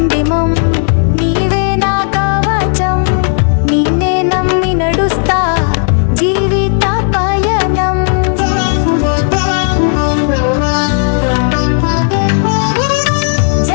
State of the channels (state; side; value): silent; right; 60 dB below the other